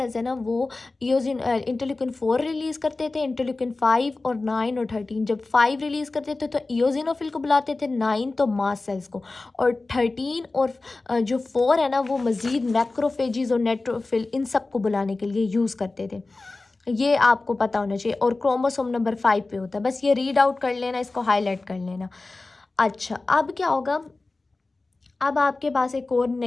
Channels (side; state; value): right; quieter; 3.4 dB